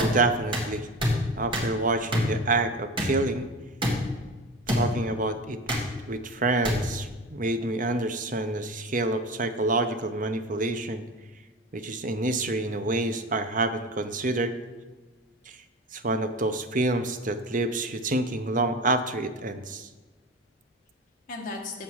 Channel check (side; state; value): both; normal; correlation 0.29